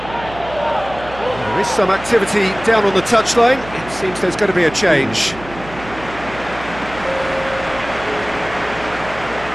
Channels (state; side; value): noise; right; hum, 15 dB below the sound